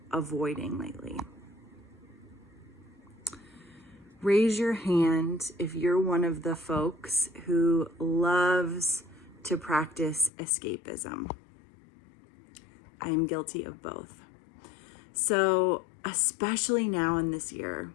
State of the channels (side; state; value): right; drops out; at 10.3 s